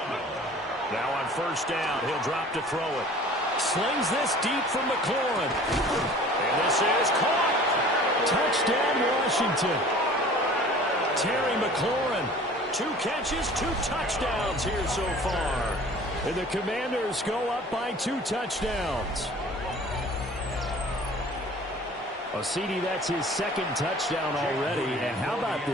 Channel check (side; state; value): both; normal; correlation 0.46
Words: Now on 1st down, he'll drop to throw it. Slings this deep from McLaurin. And this is caught. Touchdown, Washington. Terry McLaurin, 2 catches, 2 touchdowns here so far. And the Commanders go up by 2 touchdowns. Well, CD, that's his 2nd touchdown already. And how about